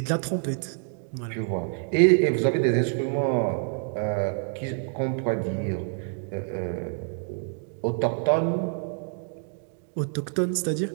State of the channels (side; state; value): left; silent; 55 dB below the other